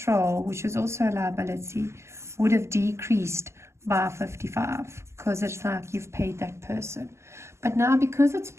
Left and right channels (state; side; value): late; left; 0.13 ms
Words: which is also a liability, would have decreased by 55 because it's like you've paid that person. But now because it's